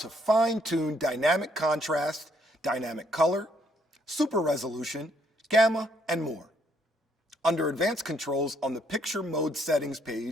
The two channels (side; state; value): both; normal; correlation 0.69